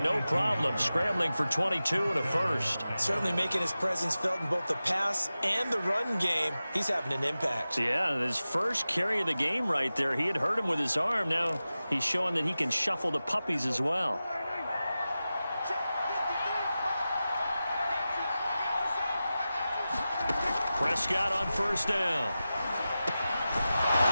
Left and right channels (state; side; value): inverted; both; correlation -0.94